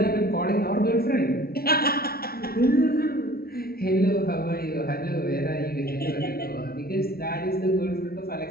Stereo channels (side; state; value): right; late; 0.44 ms